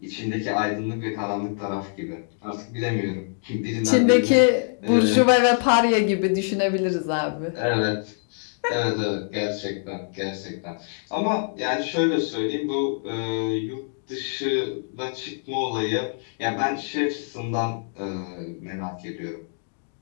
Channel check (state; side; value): silent; right; digital silence